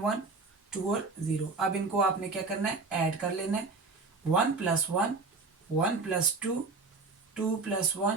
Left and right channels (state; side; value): quieter; left; 4.0 dB